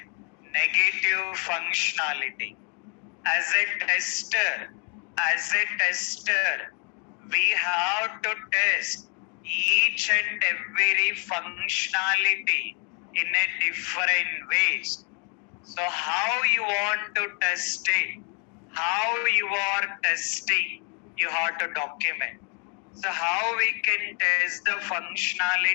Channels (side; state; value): right; quieter; 37.2 dB